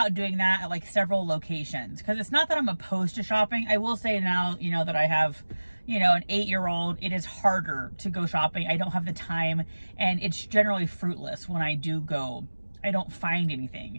doing that at like several locations, because it's not that I'm opposed to shopping. I will say now, you know, that I have, you know, an 8-year-old, it is harder to go shopping. I don't have the time, and it's generally fruitless when I do go. I don't find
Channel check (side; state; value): both; inverted; correlation -1.00